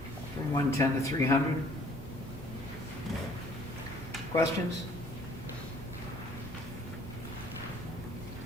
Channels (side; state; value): both; normal; correlation 0.57